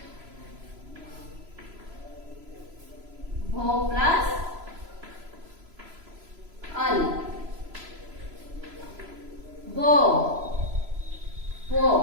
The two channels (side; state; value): left; late; 3.0 ms